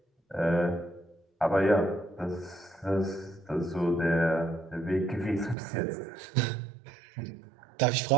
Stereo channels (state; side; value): drops out; left; at 5.6 s